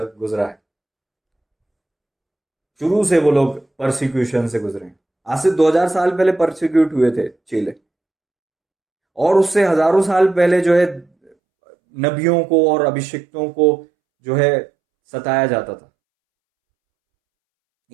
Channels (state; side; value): drops out; left; at 11.3 s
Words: है। शुरू से वो लोग परसिक्यूशन से गुजरे हैं। आज से 2000 साल पहले परसिक्यूट हुए थे चेले, और उससे हजारों साल पहले जो है नबियों को और अभिषिक्तों को जो है सताया जाता था।